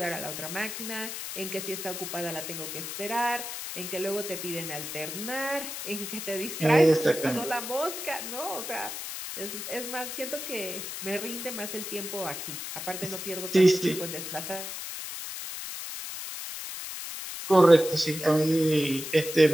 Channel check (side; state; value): left; noise; hiss, 7 dB below the sound